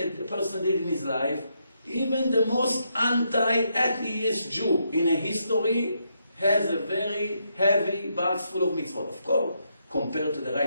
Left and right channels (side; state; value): both; inverted; correlation -0.79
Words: person did in his life, even the most anti-atheist Jew in a history has a very heavy box full of mitzvot. Of course, compared to the